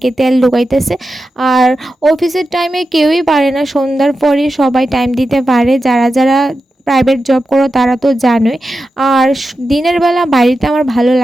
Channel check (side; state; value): both; normal; correlation 0.91